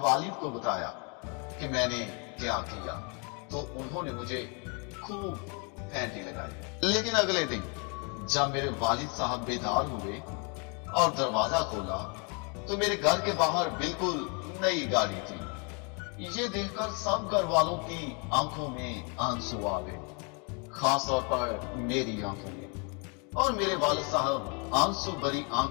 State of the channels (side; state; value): right; quieter; 35.2 dB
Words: वालिद को बताया कि मैंने क्या किया, तो उन्होंने मुझे खूब फैंटी लगाई। लेकिन अगले दिन जब मेरे वालिद साहब बेदार हुए और दरवाजा खोला तो मेरे घर के बाहर बिल्कुल नई गाड़ी थी। ये देखकर सब घर वालों की आंखों में आंसू आ गए, खास तौर पर मेरी आंखों में। और मेरे वालिद साहब आंसू भरी